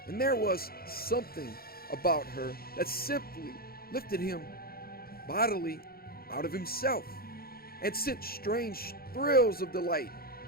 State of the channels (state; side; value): late; right; 0.44 ms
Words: and there was something about her that simply lifted him bodily out of himself and sent strange thrills of delight